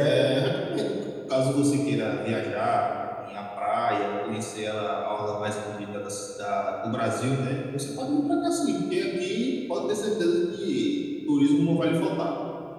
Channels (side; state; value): both; identical; correlation 1.00